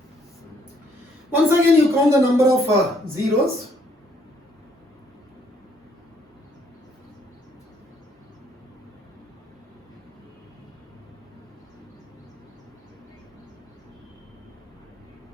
Once again, you count the number of zeros.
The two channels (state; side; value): normal; both; correlation 0.67